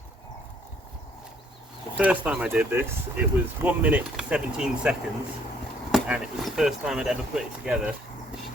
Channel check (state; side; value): normal; both; correlation 0.64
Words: The first time I did this, it was 1 minute 17 seconds, and it was the first time I'd ever put it together